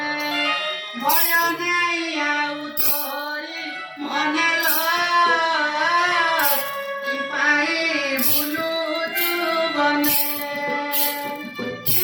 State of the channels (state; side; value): identical; both; correlation 1.00